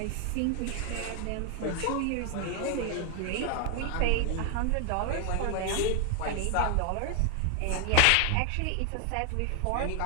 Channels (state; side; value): different; both; correlation 0.00